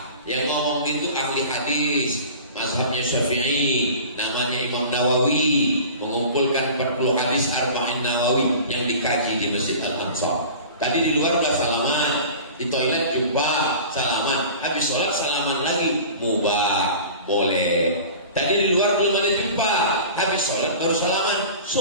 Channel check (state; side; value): inverted; both; correlation -0.39